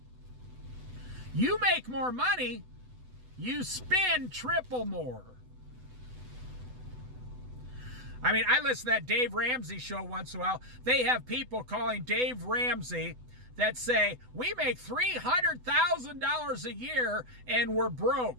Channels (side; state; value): left; late; 8.0 ms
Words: You make more money, you spend triple more. I mean, I listen to that Dave Ramsey show once in a while. They have people calling Dave Ramsey that say, we make $300,000 a year and we're